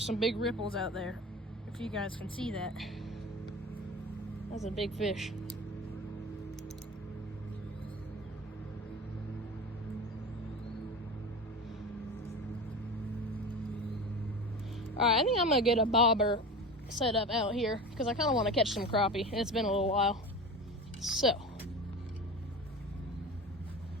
some big ripples out there. If you guys can see that. That's a big fish. Alright, I think I'm gonna get a bobber set up out here because I kind of want to catch some crappie. It's been a little while. So,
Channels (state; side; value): normal; both; correlation 0.30